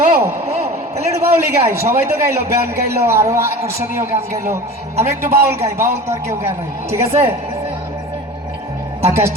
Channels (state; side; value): normal; both; correlation 0.36